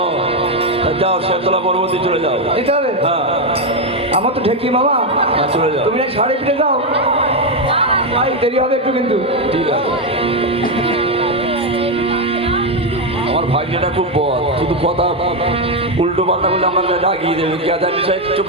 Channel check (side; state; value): both; normal; correlation 0.05